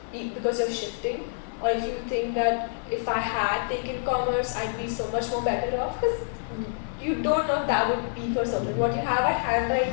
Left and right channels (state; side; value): silent; right; 60 dB below the other